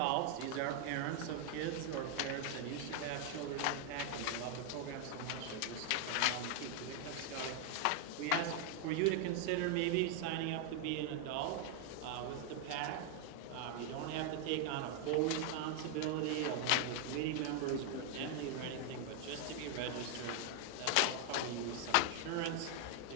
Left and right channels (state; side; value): different; both; correlation 0.00